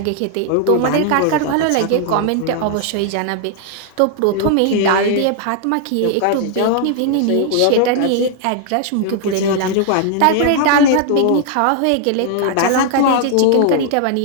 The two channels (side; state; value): both; different; correlation 0.00